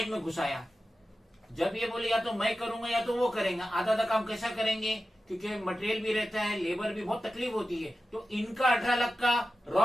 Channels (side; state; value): both; normal; correlation 0.93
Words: में घुसाया। जब ये बोले या तो मैं करूंगा या तो वो करेंगे, आधा आधा काम कैसा करेंगे, क्योंकि मटेरियल भी रहता है, लेबर भी बहुत तकलीफ होती है। तो इनका 18 लाख का